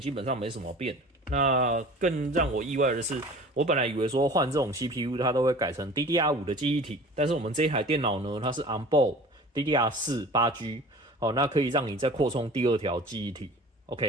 基本上没什么变。那更让我意外的是，我本来以为说换这种 CPU 它都会改成 DDR5 的记忆体，但是我们这一台电脑呢，它是 onboard DDR4 8G， 好，那可以让你再扩充第二条记忆体。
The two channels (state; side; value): normal; both; correlation 0.43